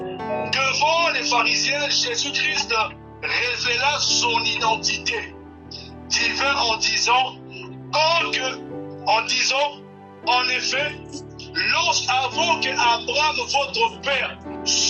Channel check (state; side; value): identical; both; correlation 1.00